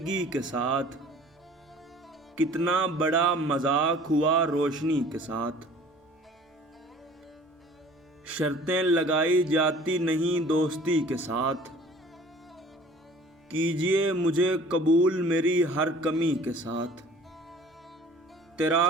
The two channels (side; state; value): both; normal; correlation 0.49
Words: کے ساتھ، کتنا بڑا مذاق ہوا روشنی کے ساتھ۔ شرطیں لگائی جاتی نہیں دوستی کے ساتھ، کیجئے مجھے قبول میری ہر کمی کے ساتھ۔ تیرا